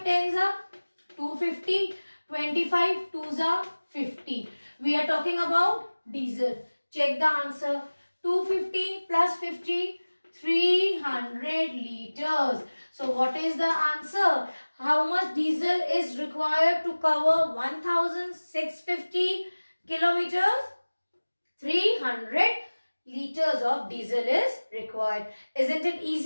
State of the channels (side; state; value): both; inverted; correlation -1.00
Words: tens are 250. 25 twos are 50. We are talking about diesel. Check the answer. 250 plus 50, 300 liters. So what is the answer? How much diesel is required to cover 1650 kilometers? 300 liters of diesel is required. Isn't it